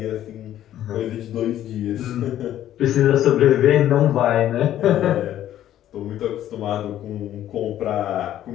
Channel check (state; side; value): quieter; right; 12.1 dB